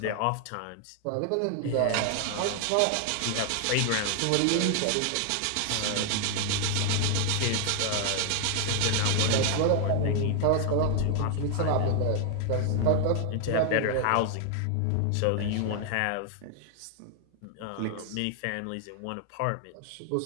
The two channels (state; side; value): different; both; correlation 0.00